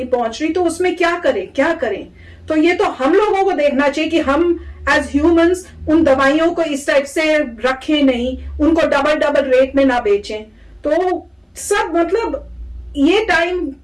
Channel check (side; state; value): both; identical; correlation 1.00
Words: पहुंच रही, तो उसमें क्या करें? तो ये तो हम लोगों को देखना चाहिए कि हम एज ह्यूमंस उन दवाइयों को इस टाइप से रखें नहीं, उनको डबल रेट में ना बेचें। तो सब मतलब ये टाइम